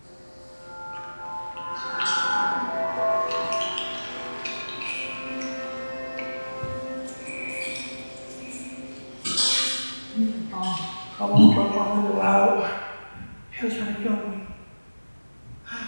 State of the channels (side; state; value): both; inverted; correlation -1.00